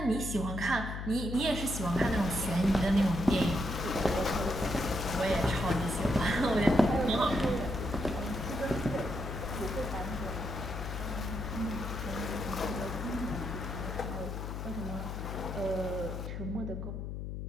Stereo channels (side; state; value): left; noise; hum, 5 dB below the sound